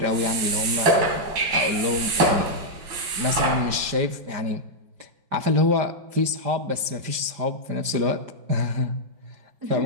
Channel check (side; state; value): left; late; 5.1 ms